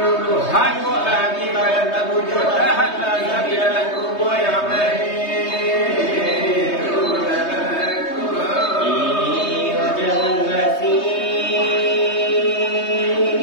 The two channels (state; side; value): late; right; 3.2 ms